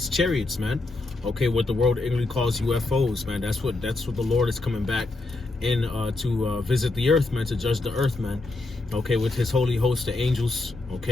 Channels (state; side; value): quieter; right; 3.1 dB